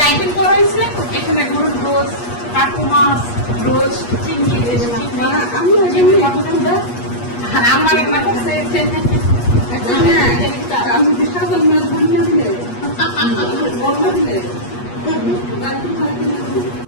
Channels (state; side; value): late; right; 8.4 ms